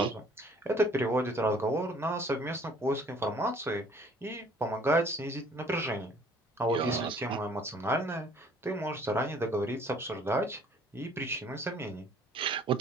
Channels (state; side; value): normal; both; correlation 0.56